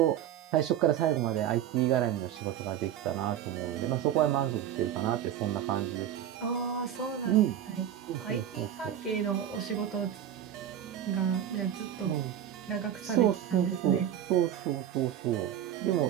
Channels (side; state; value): left; quieter; 10.5 dB